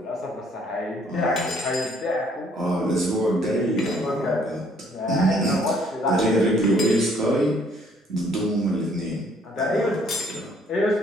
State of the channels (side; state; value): both; normal; correlation 0.63